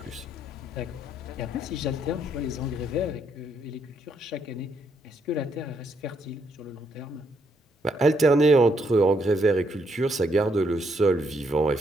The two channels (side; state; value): both; normal; correlation 0.75